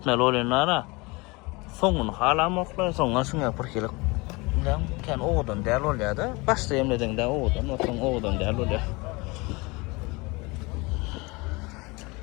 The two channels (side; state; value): right; quieter; 25.4 dB